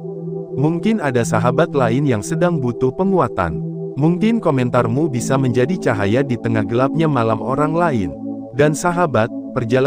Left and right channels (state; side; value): identical; both; correlation 1.00